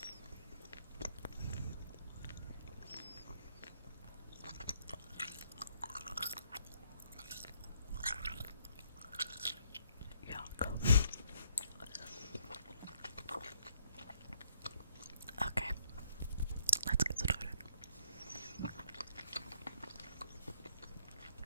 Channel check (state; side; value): inverted; both; correlation -0.67